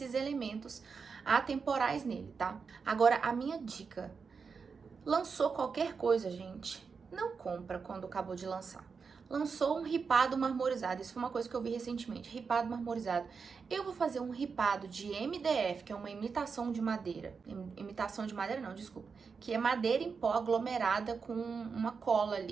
elementos atemporais nele, tá? Agora, a minha dica, lançou qualquer coisa, gente, não compra quando acabou de lançar. Lançou um ripado marmorizado, isso foi uma coisa que eu vi recentemente, ripado marmorizado. Eu vou fazer um ripado de MDF, que é uma imitação de madeira, imitação de madeira não, desculpa, que é madeira em pó aglomerada com uma cola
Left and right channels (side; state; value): left; quieter; 5.4 dB